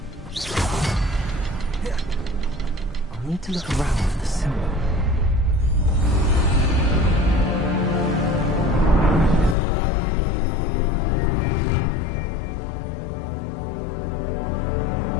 I'll need to look around for the symbol.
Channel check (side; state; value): right; drops out; at 9.6 s